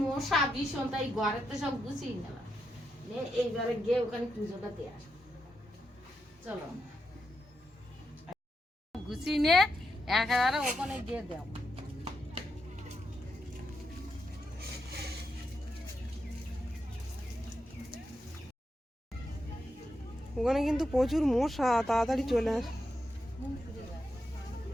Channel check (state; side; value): normal; both; correlation 0.84